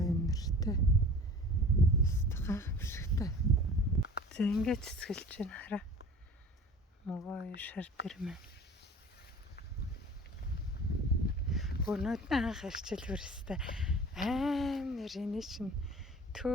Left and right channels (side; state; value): both; normal; correlation 0.42